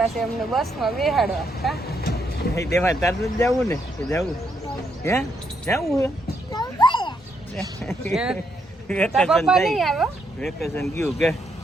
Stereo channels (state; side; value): normal; both; correlation 0.77